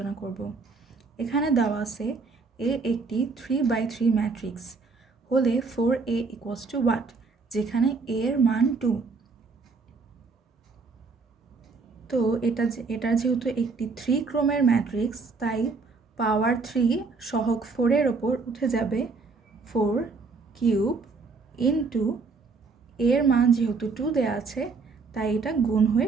করব। এখানে দেওয়া আছে এ একটি 3/3 ম্যাট্রিক্স হলে 4a ইকুয়ালস টু হোয়াট, যেখানে a এর মান 2। তো এটার যেহেতু একটি 3 ক্রমের ম্যাট্রিক্স, তাই পাওয়ার 3 সহগ 4-এর ওপর উঠে যাবে 4 কিউব ইন্টু এর মান যেহেতু 2 দেওয়া আছে, তাই এটা গুণ হয়ে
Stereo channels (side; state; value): left; quieter; 4.4 dB